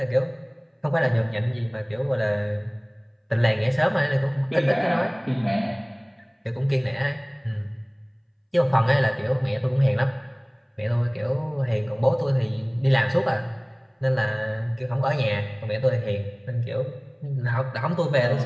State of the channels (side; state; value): both; identical; correlation 1.00